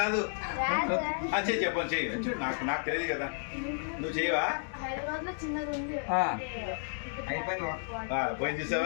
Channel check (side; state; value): right; silent; digital silence